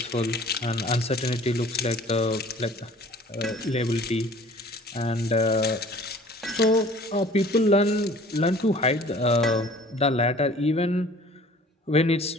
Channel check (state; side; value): normal; both; correlation 0.49